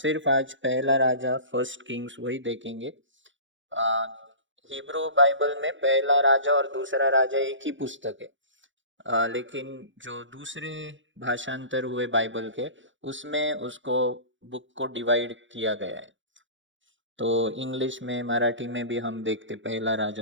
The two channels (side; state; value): left; late; 0.55 ms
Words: आज पहला राजा फर्स्ट किंग्स वही देखेंगे। हिब्रू बाइबल में पहला राजा और दूसरा राजा एक ही पुस्तक है। लेकिन जो दूसरे भाषांतर हुए बाइबल के उसमें उसको बुक को डिवाइड किया गया है। तो इंग्लिश में मराठी में भी हम देखते पहला राजा